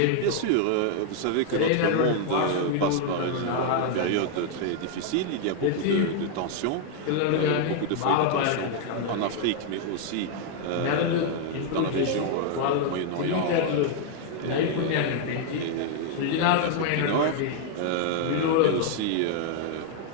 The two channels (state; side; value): different; both; correlation 0.00